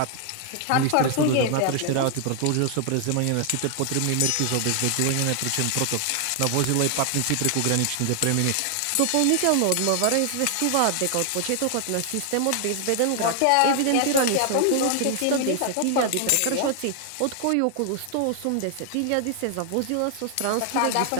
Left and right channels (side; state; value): both; different; correlation 0.00